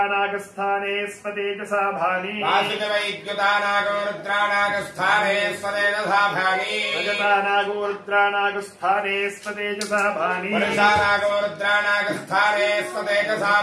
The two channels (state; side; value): identical; both; correlation 1.00